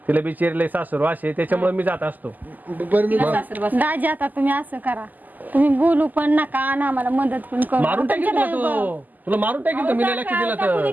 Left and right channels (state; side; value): late; left; 0.083 ms